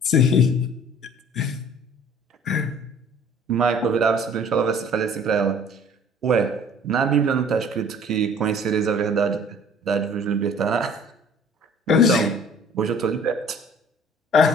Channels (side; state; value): both; normal; correlation 0.51